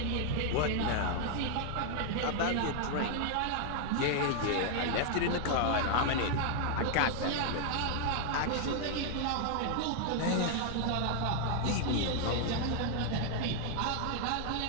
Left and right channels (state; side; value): different; both; correlation 0.00